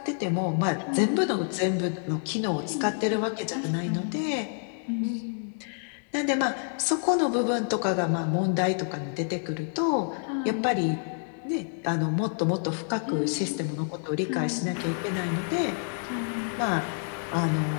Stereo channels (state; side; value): silent; right; 59 dB below the other